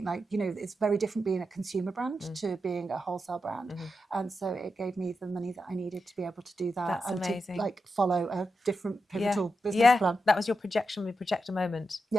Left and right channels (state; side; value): normal; both; correlation 0.88